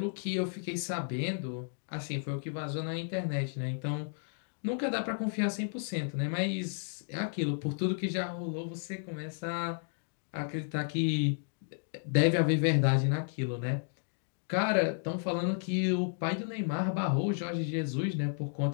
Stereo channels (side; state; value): right; silent; digital silence